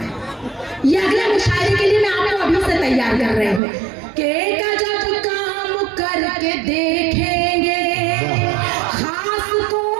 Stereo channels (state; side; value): drops out; left; at 3.6 s